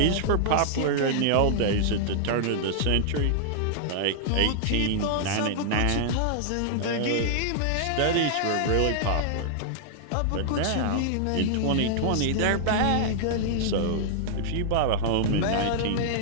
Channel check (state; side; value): different; both; correlation -0.01